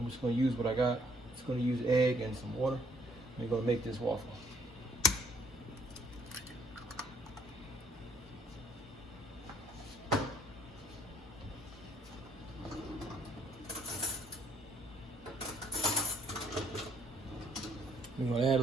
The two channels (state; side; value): normal; both; correlation 0.65